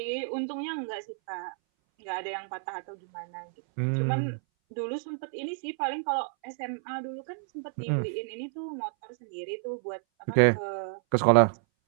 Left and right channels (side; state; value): left; silent; 58 dB below the other